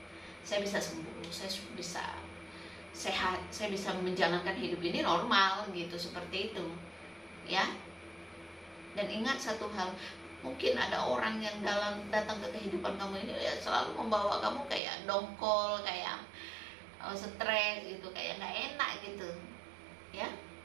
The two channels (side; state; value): left; drops out; at 14.8 s